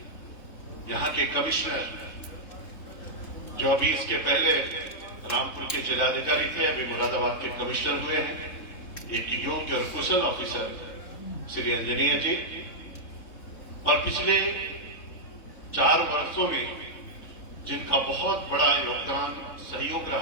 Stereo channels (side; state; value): right; late; 3.7 ms